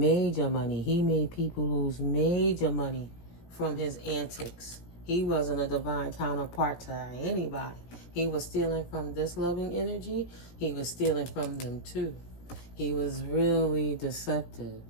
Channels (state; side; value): late; right; 17 ms